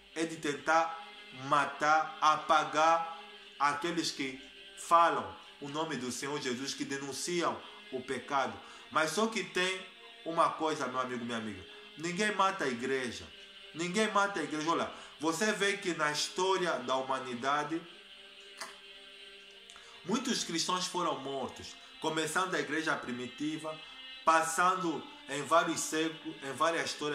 é de tentar matar, apagar aqueles que falam o nome do Senhor Jesus, que denunciam o pecado. Mas só que tem uma coisa, meu amigo, minha amiga: ninguém mata a igreja. Ninguém mata a igreja. Olha, você vê que na história da humanidade muitos cristãos foram mortos, começando da igreja primitiva, passando em vários séculos, em várias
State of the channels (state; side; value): identical; both; correlation 1.00